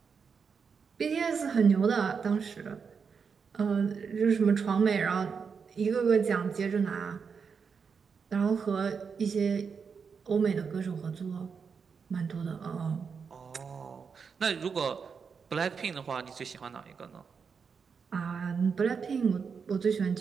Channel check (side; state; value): left; quieter; 5.9 dB